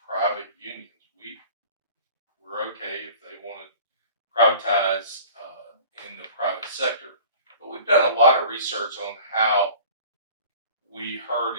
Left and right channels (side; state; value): both; inverted; correlation -0.44